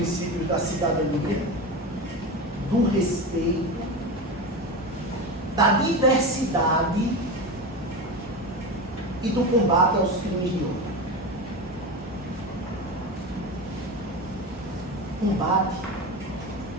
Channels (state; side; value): normal; both; correlation 0.23